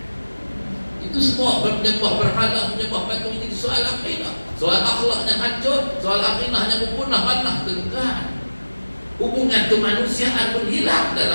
Itu semua menyembah berhala, menyembah patung. Ini soal akidah, soal akhlaknya hancur, soal akidahnya punah manah, tuan. Hubungan kemanusiaan pun hilang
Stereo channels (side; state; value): both; inverted; correlation -1.00